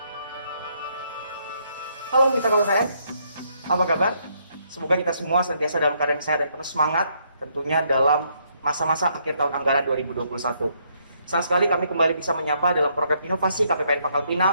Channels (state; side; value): inverted; both; correlation -0.72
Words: mitra KPPN, apa kabar? Semoga kita semua senantiasa dalam keadaan sehat dan penuh semangat, tentunya dalam masa-masa akhir tahun anggaran 2021. Senang sekali kami kembali bisa menyapa dalam program inovasi KPPN Pangkal